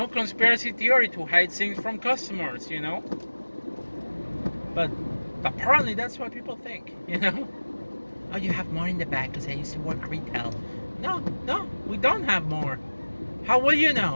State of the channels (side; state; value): both; inverted; correlation -1.00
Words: conspiracy theory to hide things from customers. But apparently that's what people think. Oh, you have more in the back because I used to work retail. No, we don't have more. How will you